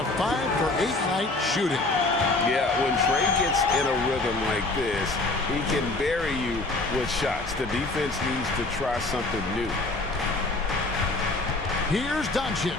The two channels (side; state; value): right; quieter; 3.1 dB